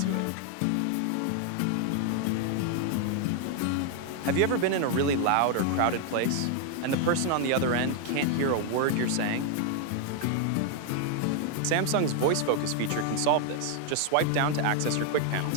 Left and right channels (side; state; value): both; different; correlation 0.00